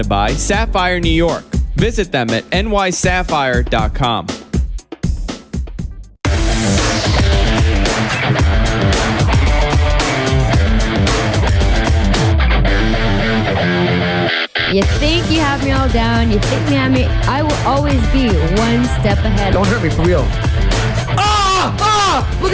by Sapphire New York. Visit them at nysapphire.com. You think you have me all down, you think you have me, I will always be one step ahead. Don't hurt me, for real. Ah! Ah! Look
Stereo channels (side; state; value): both; identical; correlation 1.00